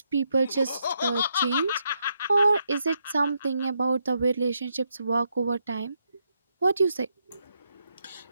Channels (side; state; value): both; inverted; correlation -0.80